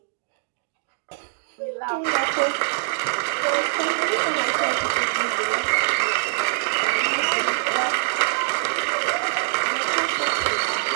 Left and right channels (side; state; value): left; silent; digital silence